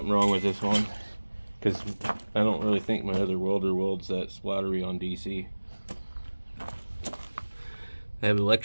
wrong with this one, because I don't really think my other welder welds that splattery on DC. I have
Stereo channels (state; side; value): inverted; both; correlation -1.00